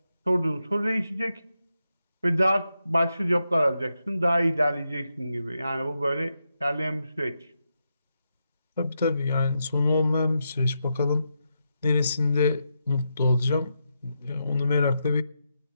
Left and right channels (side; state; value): both; inverted; correlation -0.85